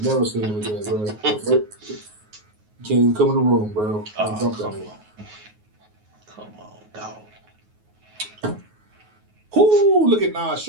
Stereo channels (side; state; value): left; late; 9.4 ms